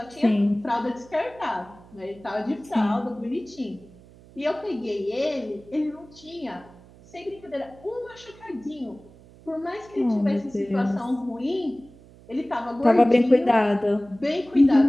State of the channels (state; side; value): noise; right; hum, 23 dB below the sound